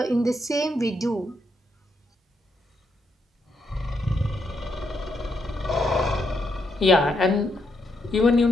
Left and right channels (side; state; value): both; normal; correlation 0.79